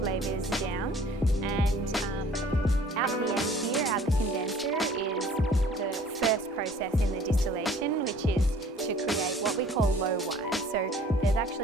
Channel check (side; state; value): both; normal; correlation 0.52